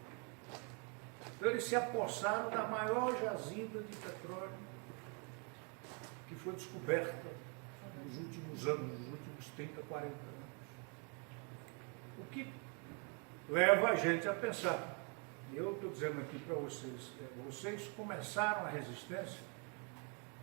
Então eles se apossaram da maior jazida de petróleo que foi descoberta nos últimos anos, nos últimos 30, 40 anos. O que leva a gente a pensar. E eu estou dizendo aqui para vocês, vocês começaram a resistência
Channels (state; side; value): quieter; left; 36.4 dB